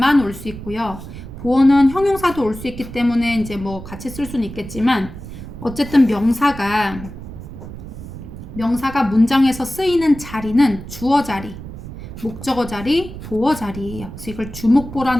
올 수 있고요. 보어는 형용사도 올 수 있기 때문에 이제 뭐 같이 쓸 수는 있겠지만, 어쨌든 명사가 문장에서 쓰이는 자리는 주어 자리, 목적어 자리, 보어 자리예요. 그래서 이걸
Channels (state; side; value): noise; right; rumble, 12 dB below the sound